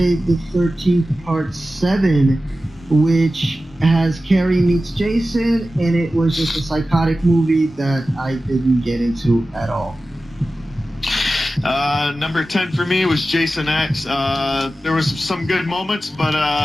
the 13th Part 7, which has Carrie meets Jason, and it was just a psychotic movie that I didn't get into at all. Number 10 for me was Jason X. There was some good moments, but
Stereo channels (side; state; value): both; normal; correlation 0.94